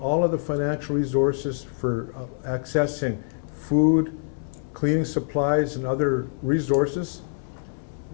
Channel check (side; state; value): right; silent; 62 dB below the other